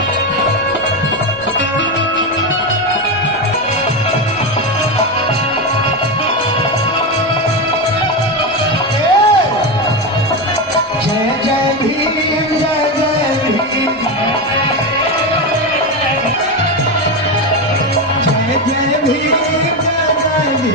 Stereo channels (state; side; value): normal; both; correlation 0.14